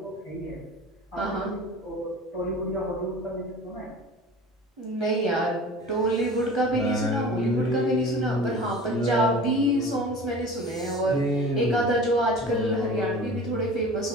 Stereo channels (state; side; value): normal; both; correlation 0.39